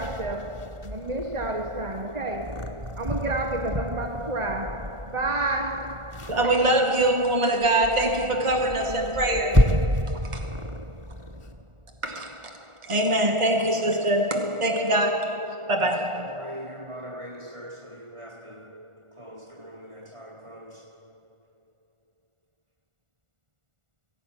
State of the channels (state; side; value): late; left; 1.4 ms